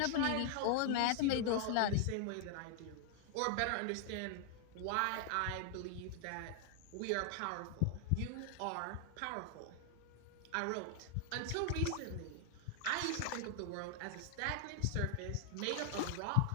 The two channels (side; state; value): both; different; correlation 0.00